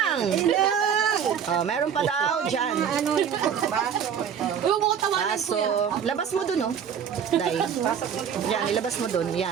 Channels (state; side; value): quieter; left; 7.9 dB